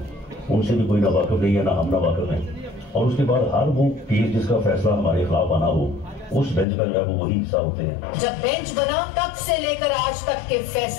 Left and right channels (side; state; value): right; drops out; at 6.7 s